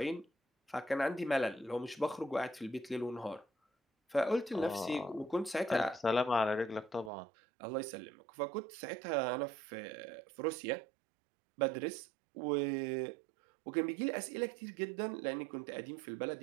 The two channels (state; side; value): drops out; left; at 7.1 s